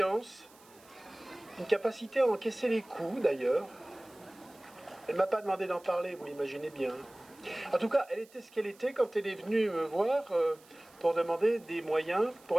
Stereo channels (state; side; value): noise; right; hiss, 26 dB below the sound